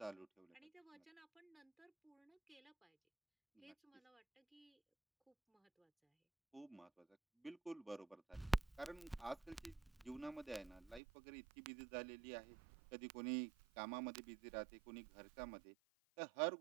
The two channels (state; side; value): drops out; left; at 11.0 s